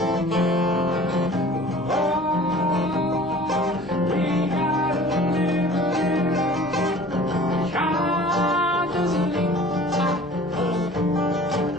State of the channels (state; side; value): normal; both; correlation 0.47